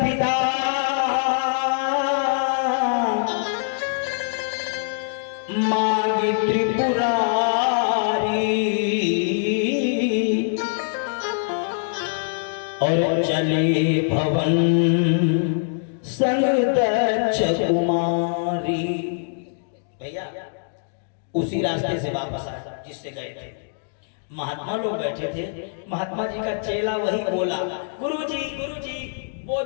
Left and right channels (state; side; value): silent; right; digital silence